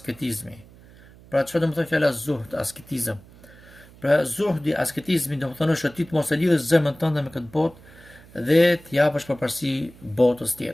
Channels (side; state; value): right; noise; hum, 23 dB below the sound